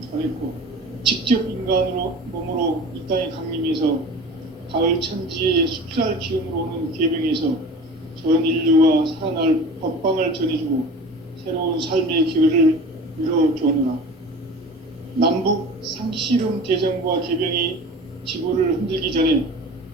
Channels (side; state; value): both; normal; correlation 0.38